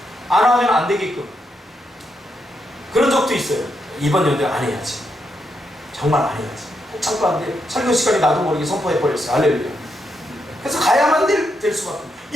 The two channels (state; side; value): normal; both; correlation 0.81